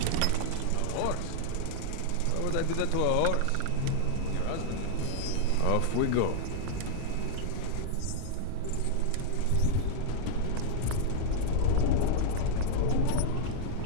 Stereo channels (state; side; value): different; both; correlation -0.01